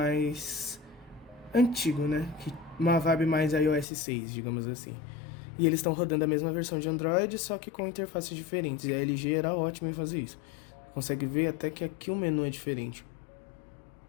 antigo, né? Uma vibe mais iOS 6, digamos assim. E eles estão rodando a mesma versão de Android, só que com interfaces diferentes. E a LG era ótima em fazer isso. Consegue ver até que aqui o menu é diferente.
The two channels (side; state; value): right; drops out; at 3.9 s